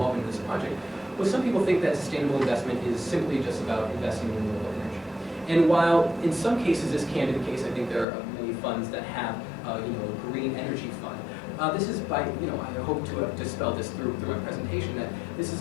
in this project. Well, some people think that sustainable investment is simply just about investing in renewable energy. And while in some cases this can be the case, I think there are many funds that have a green energy fund. This is by, I hope to dispel this through my presentation, that this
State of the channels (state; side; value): drops out; right; at 8.1 s